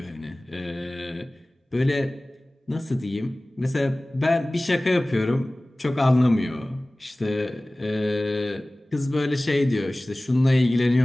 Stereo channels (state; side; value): normal; both; correlation 0.98